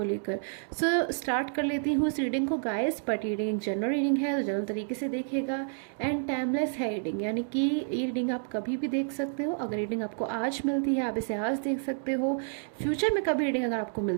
लेकर। स्टार्ट कर लेती हूँ इस रीडिंग को गाइस। बट रीडिंग एक जनरल रीडिंग है तो जनरल तरीके से देखेगा एंड टाइमलेस है रीडिंग, यानी कि ये रीडिंग आप कभी भी देख सकते हो। अगर रीडिंग आपको आज मिलती है आप इसे आज देख सकते हो। फ्यूचर में कभी रीडिंग अगर आपको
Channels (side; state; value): left; silent; digital silence